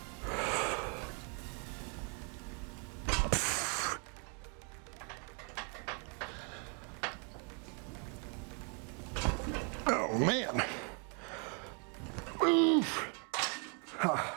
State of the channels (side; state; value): left; quieter; 37.9 dB